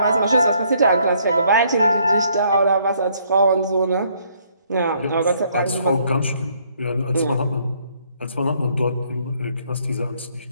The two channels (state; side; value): inverted; both; correlation -0.67